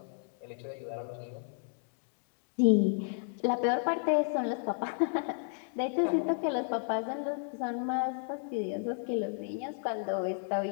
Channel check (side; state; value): right; silent; 56 dB below the other